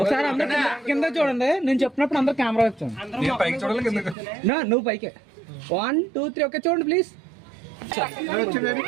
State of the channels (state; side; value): drops out; left; at 4.2 s